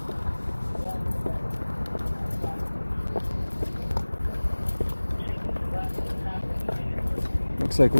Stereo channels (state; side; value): inverted; both; correlation -1.00